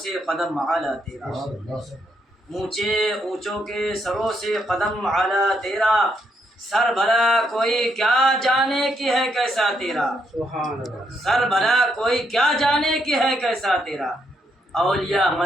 سے قدم اعلیٰ تیرا، اونچے اونچوں کے سروں سے قدم اعلیٰ تیرا، سر بھلا کوئی کیا جانے کی ہے کیسا تیرا، سر بھلا کوئی کیا جانے کی ہے کیسا تیرا، اولیاء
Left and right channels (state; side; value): normal; both; correlation 0.77